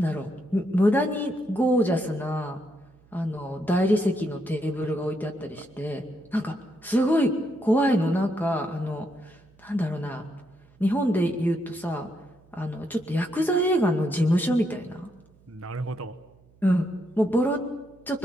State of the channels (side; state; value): right; noise; hum, 29 dB below the sound